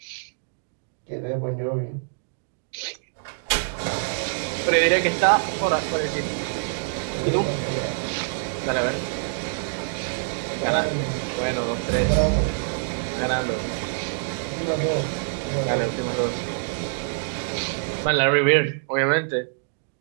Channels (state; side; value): silent; left; digital silence